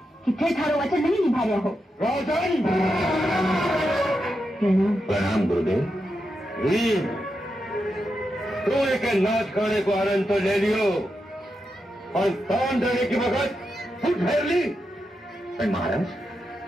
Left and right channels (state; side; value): normal; both; correlation 0.86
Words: कि थे थारो वचन नहीं निभा रहा हो। राजन! प्रणाम गुरुदेव। तू एक नाच खाने को आनंद तो ले लियो और दान देने की वक्त खुद ठहर ली। महाराज,